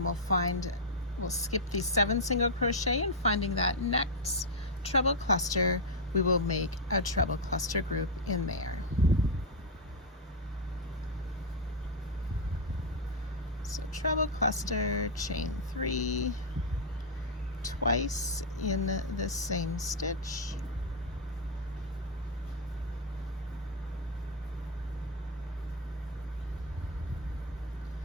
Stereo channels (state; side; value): normal; both; correlation -0.01